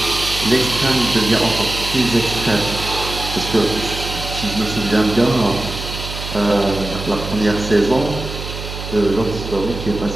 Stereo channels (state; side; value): noise; right; hum, 8 dB below the sound